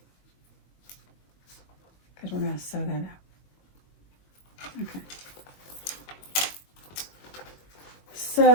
Because we're going to sew that up. Okay.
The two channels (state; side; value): late; right; 21 ms